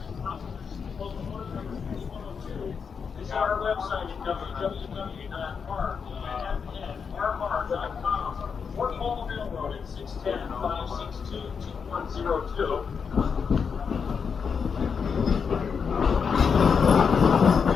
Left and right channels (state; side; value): quieter; right; 6.1 dB